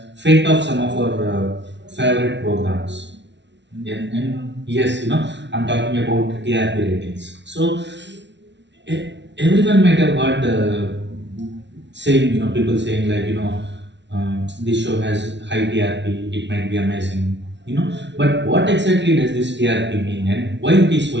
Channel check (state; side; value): late; left; 0.51 ms